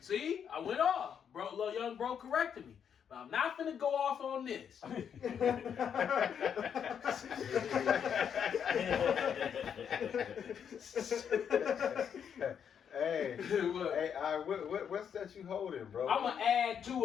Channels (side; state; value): right; quieter; 7.9 dB